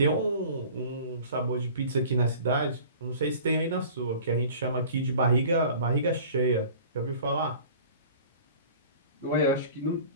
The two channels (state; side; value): inverted; both; correlation -0.44